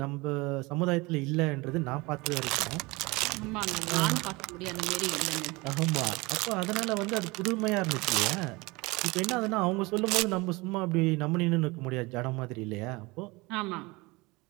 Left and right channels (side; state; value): left; quieter; 23.9 dB